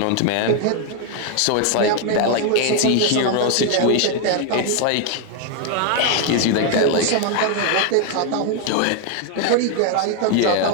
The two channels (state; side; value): different; both; correlation 0.00